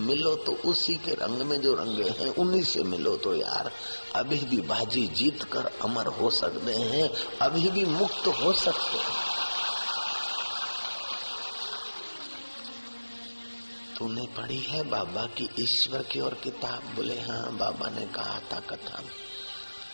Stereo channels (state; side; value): inverted; both; correlation -1.00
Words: तो उसी के रंग में जो रंगे हैं उन्हीं से मिलो तो यार अभी भी बाजी जीत कर अमर हो सकते हैं, अभी भी मुक्त हो सकते हैं। तूने पढ़ी है बाबा की ईश्वर की और किताब? बोले हाँ, बाबा ने कहा था कथा में,